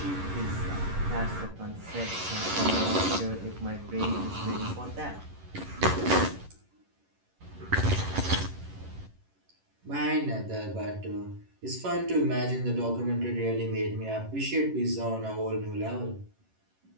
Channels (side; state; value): left; late; 11 ms